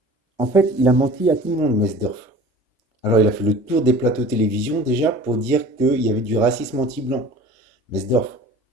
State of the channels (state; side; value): normal; both; correlation 0.43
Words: En fait, il a menti à tout le monde, Mesdorf. Alors, il a fait le tour des plateaux télévision déjà pour dire qu'il y avait du racisme anti-blanc. Mesdorf,